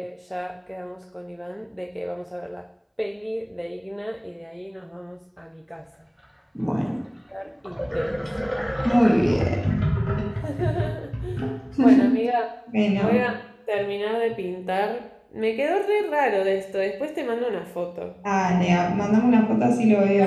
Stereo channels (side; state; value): both; identical; correlation 1.00